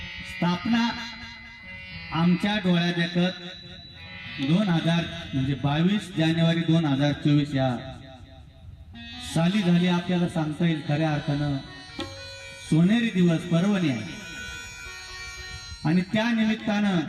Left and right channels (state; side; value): identical; both; correlation 1.00